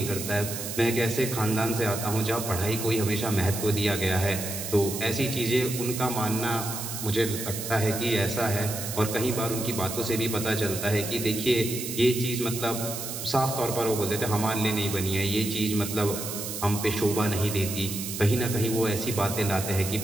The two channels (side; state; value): right; noise; hiss, 6 dB below the sound